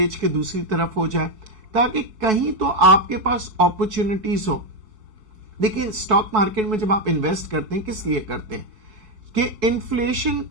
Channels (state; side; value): late; left; 4.6 ms